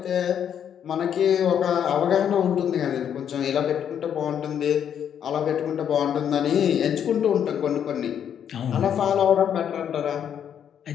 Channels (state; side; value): quieter; right; 8.9 dB